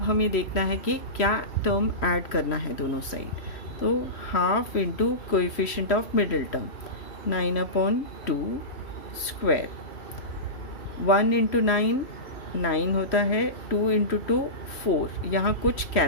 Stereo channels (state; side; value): late; right; 3.1 ms